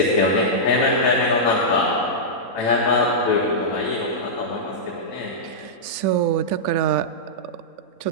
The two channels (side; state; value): right; late; 3.5 ms